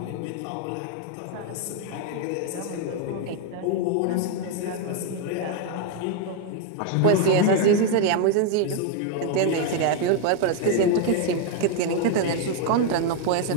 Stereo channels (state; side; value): different; both; correlation 0.00